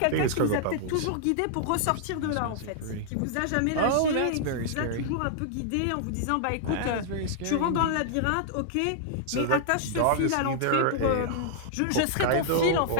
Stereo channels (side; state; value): both; different; correlation -0.01